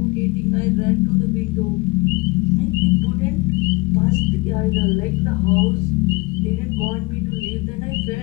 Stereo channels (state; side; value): quieter; right; 25.4 dB